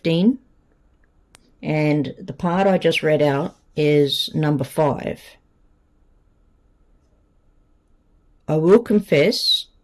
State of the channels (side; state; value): both; identical; correlation 1.00